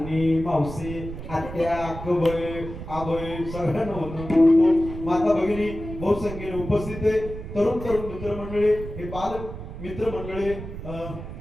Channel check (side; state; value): right; noise; rumble, 10 dB below the sound